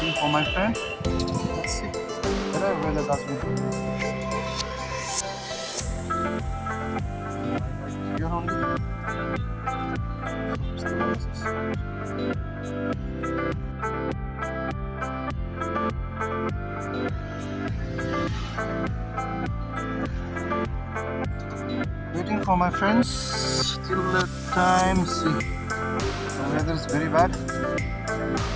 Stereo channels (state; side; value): identical; both; correlation 1.00